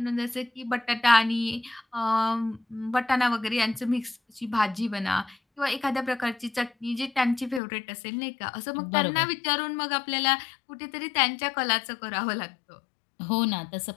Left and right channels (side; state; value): right; drops out; at 7.6 s